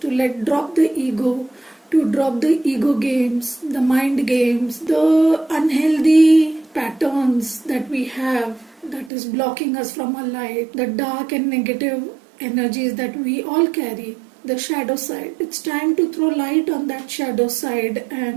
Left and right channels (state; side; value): drops out; left; at 9.1 s